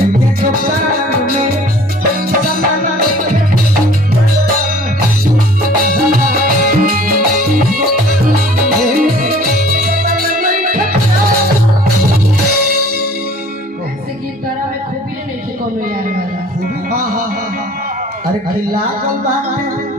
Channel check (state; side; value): normal; both; correlation 0.50